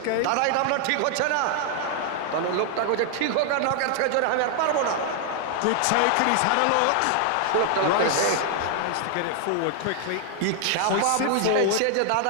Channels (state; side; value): different; both; correlation 0.00